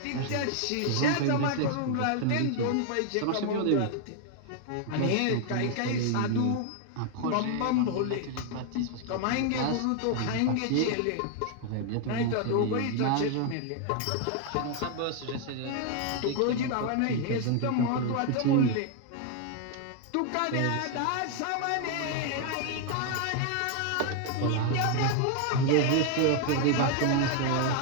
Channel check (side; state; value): both; different; correlation 0.00